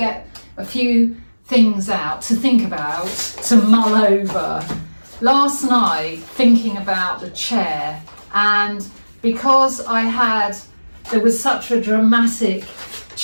a few things out to think about, to mull over. Last night, thinking about the chair, and because there was such a dramatic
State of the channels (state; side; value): inverted; both; correlation -1.00